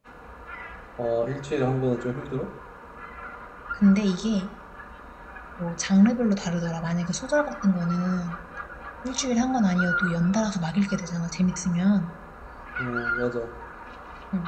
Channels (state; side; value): identical; both; correlation 1.00